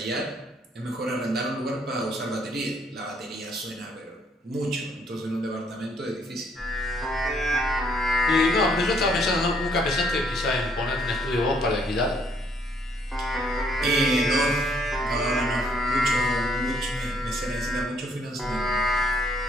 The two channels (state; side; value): normal; both; correlation 0.67